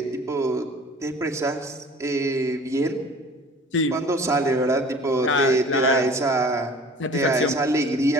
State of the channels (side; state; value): both; normal; correlation 0.46